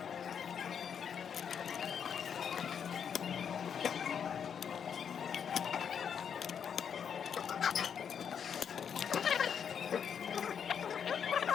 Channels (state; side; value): quieter; right; 7.6 dB